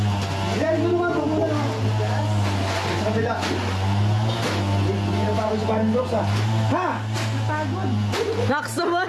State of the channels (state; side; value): identical; both; correlation 1.00